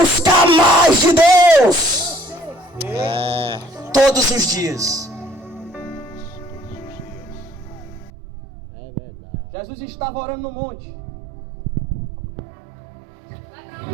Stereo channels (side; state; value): left; drops out; at 8.1 s